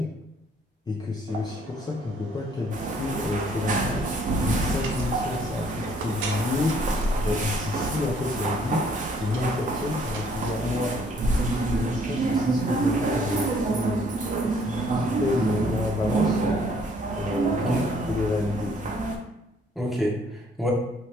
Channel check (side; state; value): both; normal; correlation 0.63